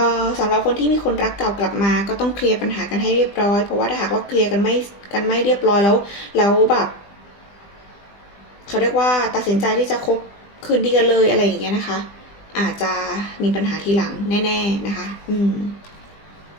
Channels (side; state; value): right; late; 20 ms